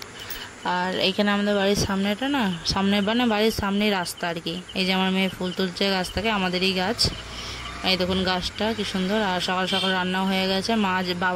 আর এইখানে আমাদের বাড়ির সামনেটা না, সামনে মানে বাড়ির সামনেই রাস্তা আর কি। এই যে আমার মেয়ে ফুল তুলছে গাছ থেকে, আমাদেরই গাছ। এই দেখুন গাছটা কি সুন্দর। আর সকাল সকাল রান্নাও হয়ে গেছে।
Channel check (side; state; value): both; identical; correlation 1.00